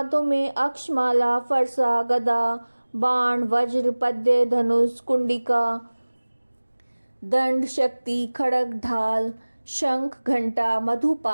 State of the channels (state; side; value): inverted; both; correlation -1.00